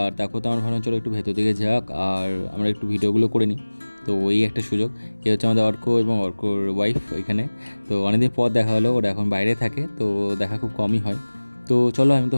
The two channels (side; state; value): both; inverted; correlation -1.00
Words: তারপর তো আমরা ভাবলাম চলো একটু ভেতর দিকে যাক আর আমরা একটু ভিডিওগুলো করে নিই। তো ওই একটা সুযোগ। এ হচ্ছে আমাদের অর্ক এবং অর্কর ওয়াইফ এখানে। তো অনেকদিন পর দেখা হলো, ওরা এখন বাইরে থাকে, তো দেখা খুব কমই হয়। তো চলো, আমি তো